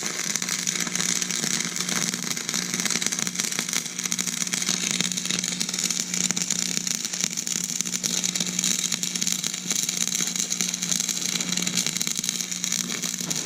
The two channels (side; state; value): both; identical; correlation 1.00